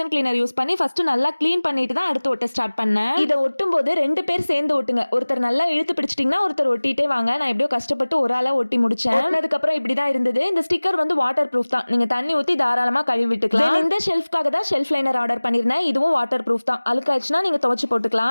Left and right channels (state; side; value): inverted; both; correlation -1.00